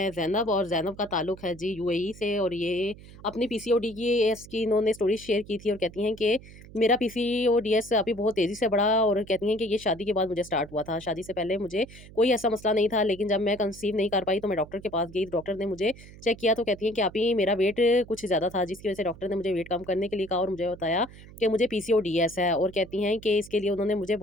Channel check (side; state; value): right; noise; hum, 19 dB below the sound